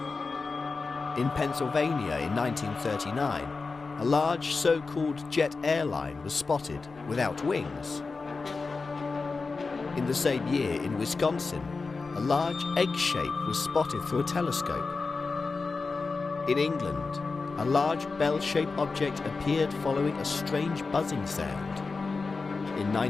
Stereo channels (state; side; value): quieter; right; 4.2 dB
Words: In Pennsylvania in 1939, a large so-called jet airline was spotted without wings. In the same year in Wisconsin, a large egg shape was spotted through a telescope. In England, a large bell-shaped object appeared following a strange buzzing sound. In